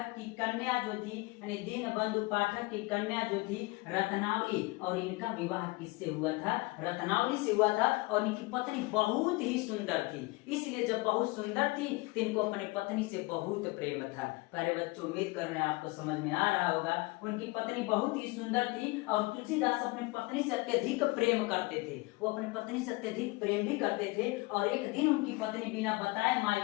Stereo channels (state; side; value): quieter; right; 24.0 dB